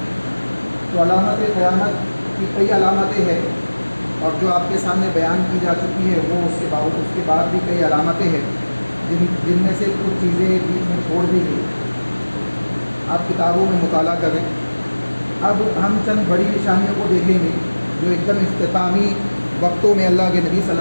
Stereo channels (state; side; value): inverted; both; correlation -1.00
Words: تو علامت قیامت کی کئی علامتیں ہیں، اور جو آپ کے سامنے بیان کی جا چکی ہے وہ اس کے بعد بھی کئی علامتیں ہیں جن میں سے کچھ چیزیں بیچ میں چھوڑ دی گئی، آپ کتابوں میں مطالعہ کریں۔ اب ہم چند بڑی نشانیوں کو دیکھیں گے جو ایک دم اختتامی وقتوں میں اللہ کے نبی صلی